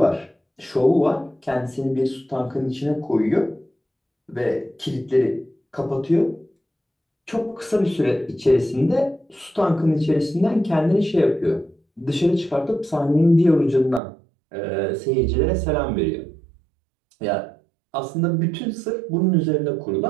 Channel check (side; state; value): left; drops out; at 14.0 s